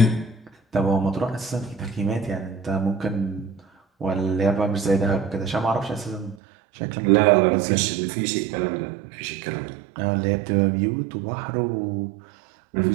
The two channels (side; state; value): left; drops out; at 6.4 s